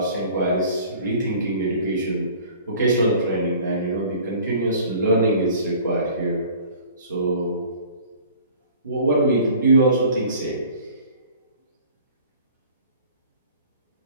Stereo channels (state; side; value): inverted; both; correlation -0.48